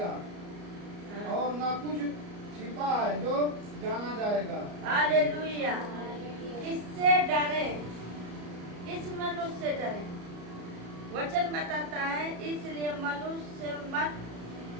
हाँ। और ना कुछ छिपा है जो जाना जाएगा। हालेलुया। किससे डरे? किस मनुष्य से डरे? वचन बताता है इसलिए मनुष्य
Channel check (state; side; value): late; left; 34 ms